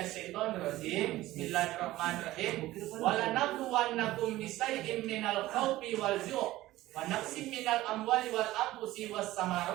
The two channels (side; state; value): left; quieter; 16.5 dB